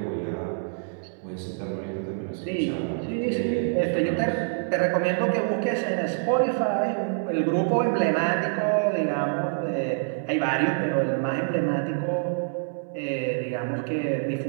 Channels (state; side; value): silent; left; digital silence